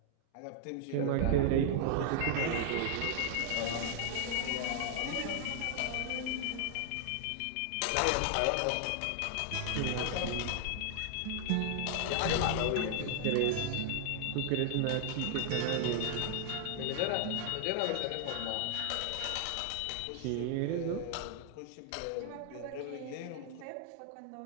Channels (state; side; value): different; both; correlation -0.01